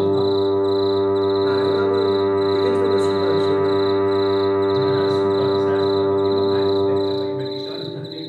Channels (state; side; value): identical; both; correlation 1.00